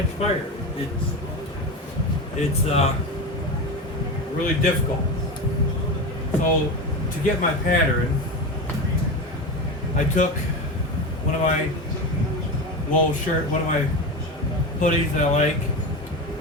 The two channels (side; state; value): both; normal; correlation 0.22